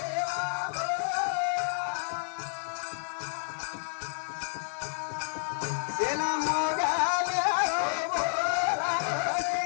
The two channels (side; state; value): right; silent; digital silence